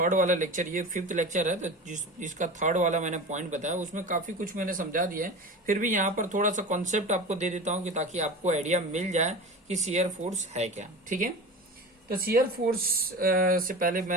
वाला लेक्चर, ये 5th लेक्चर है, तो जिसका थर्ड वाला मैंने पॉइंट बताया उसमें काफी कुछ मैंने समझा दिया है। फिर भी यहाँ पर थोड़ा सा कॉन्सेप्ट आपको दे देता हूँ कि ताकि आपको आइडिया मिल जाए कि शियर फोर्स है क्या। ठीक है, तो शियर फोर्स से पहले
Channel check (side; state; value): both; normal; correlation 0.31